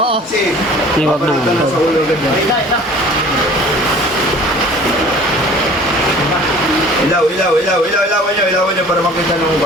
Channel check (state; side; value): normal; both; correlation 0.48